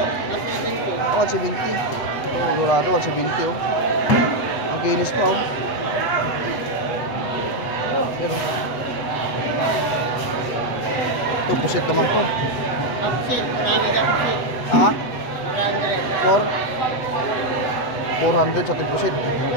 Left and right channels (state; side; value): late; right; 7.9 ms